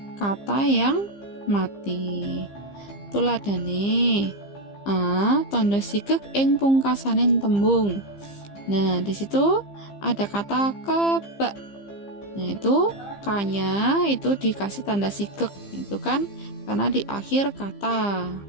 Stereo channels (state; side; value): late; right; 15 ms